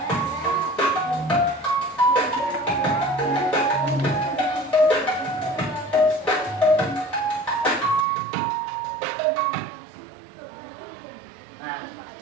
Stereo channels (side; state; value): left; drops out; at 8.1 s